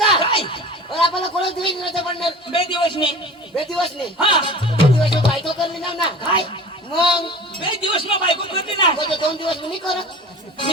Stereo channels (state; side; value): normal; both; correlation 0.39